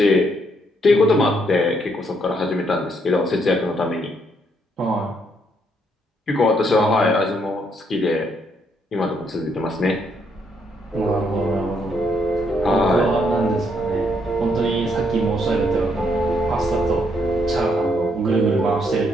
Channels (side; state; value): both; normal; correlation 0.73